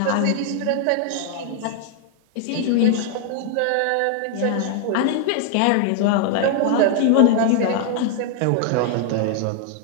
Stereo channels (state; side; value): different; both; correlation 0.00